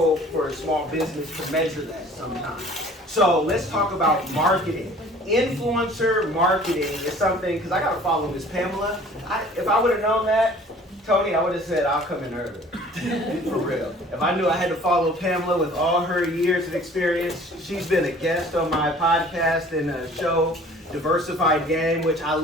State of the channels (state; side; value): normal; both; correlation 0.50